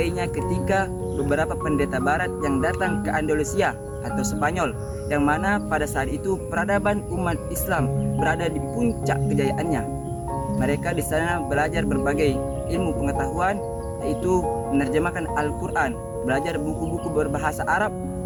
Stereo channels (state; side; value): identical; both; correlation 1.00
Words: ketika beberapa pendeta barat yang datang ke Andalusia atau Spanyol, yang mana pada saat itu peradaban umat Islam berada di puncak kejayaannya. Mereka di sana belajar berbagai ilmu pengetahuan, yaitu menerjemahkan Al-Quran, belajar buku-buku berbahasa Arab,